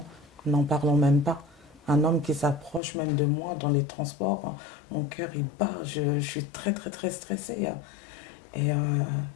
n'en parlons même pas. Un homme qui s'approche même de moi dans les transports, mon cœur il bat, je suis très très très stressée. Et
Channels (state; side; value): drops out; right; at 2.8 s